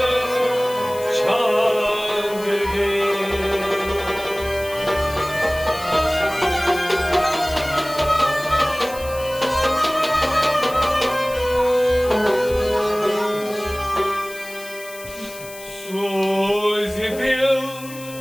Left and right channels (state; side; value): noise; left; hiss, 16 dB below the sound